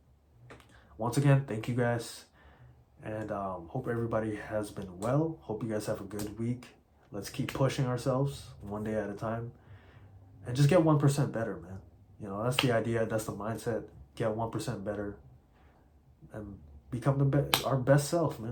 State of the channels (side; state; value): both; identical; correlation 1.00